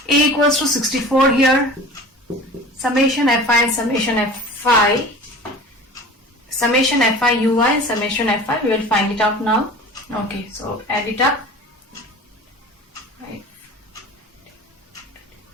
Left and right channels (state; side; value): normal; both; correlation 0.39